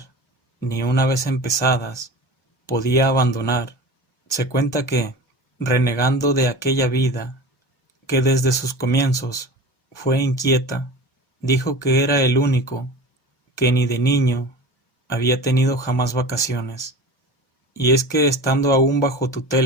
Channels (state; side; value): normal; both; correlation 0.34